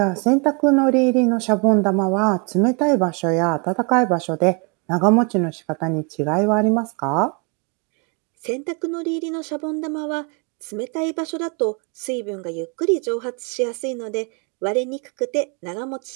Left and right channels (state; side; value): quieter; left; 33.4 dB